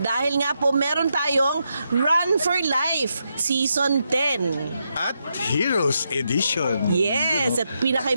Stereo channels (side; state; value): both; inverted; correlation -0.83